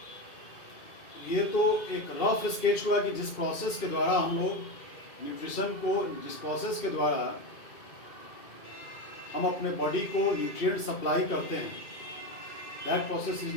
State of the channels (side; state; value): right; late; 2.2 ms